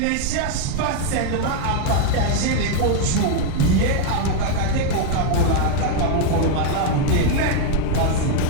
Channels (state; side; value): different; both; correlation 0.00